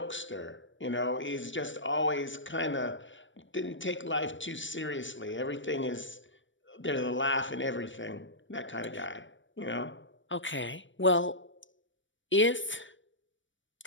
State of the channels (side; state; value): right; late; 0.55 ms